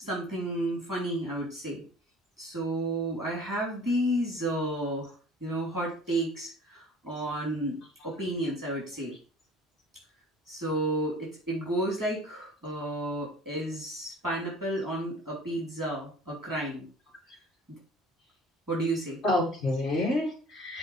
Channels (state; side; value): normal; both; correlation 0.47